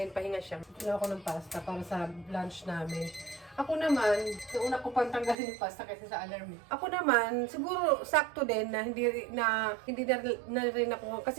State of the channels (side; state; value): left; drops out; at 5.4 s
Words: pahinga siya. Luto na ako ng pasta para sa lunch namin. Ako naman, nauna ko pang tanggalin yung pasta kasi sa alarm. Ako naman, siguro sakto din na hindi na rin ako